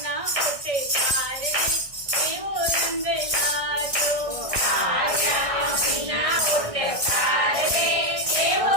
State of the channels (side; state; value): left; late; 1.6 ms